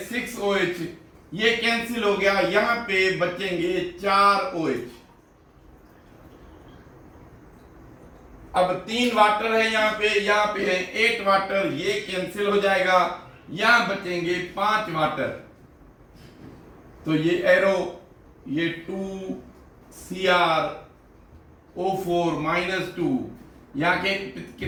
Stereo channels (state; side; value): identical; both; correlation 1.00